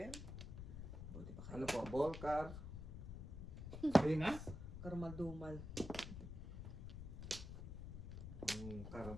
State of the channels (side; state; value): left; noise; rumble, 8 dB below the sound